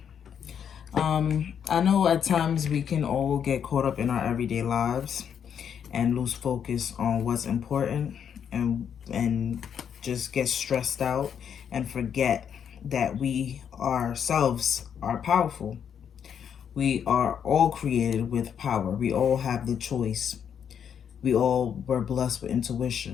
I know at times we can all get caught up in our everyday lives and lose focus on what's important and just get stressed out and forget that we ourselves are powerful. We are all created with power. We all have the choice. We all were blessed with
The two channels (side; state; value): right; quieter; 8.1 dB